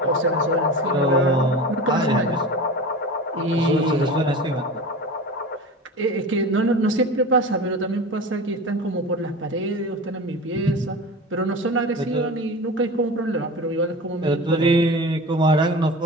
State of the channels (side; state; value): both; normal; correlation 0.32